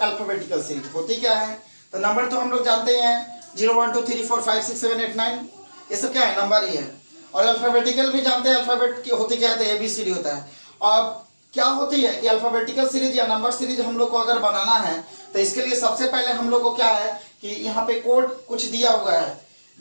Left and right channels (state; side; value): inverted; both; correlation -1.00